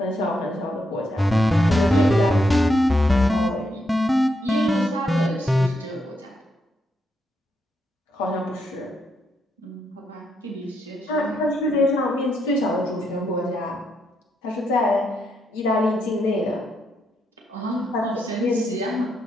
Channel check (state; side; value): normal; both; correlation 0.79